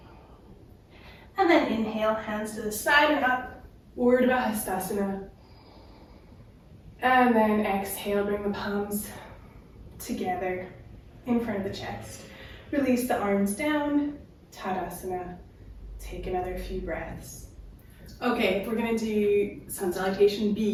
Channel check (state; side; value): identical; both; correlation 1.00